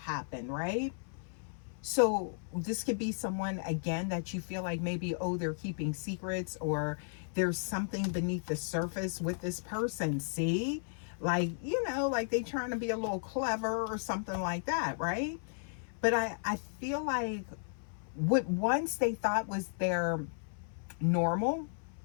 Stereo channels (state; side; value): silent; right; 55 dB below the other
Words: right? So this could be someone, again, that you feel like maybe, oh, they're keeping secrets, or there's something beneath the surface with this person. See, like, like they trying to be a little clever or something like that, right? But I feel like what once they thought was their normal